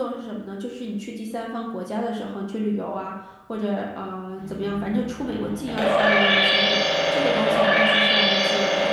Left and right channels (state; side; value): identical; both; correlation 1.00